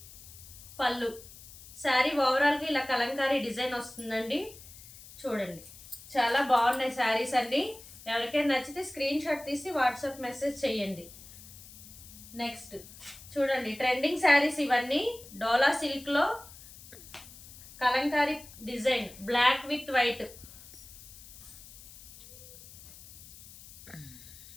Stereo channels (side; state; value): left; noise; hiss, 18 dB below the sound